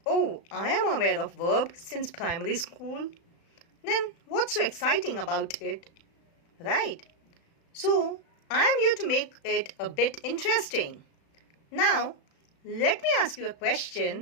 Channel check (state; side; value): late; right; 36 ms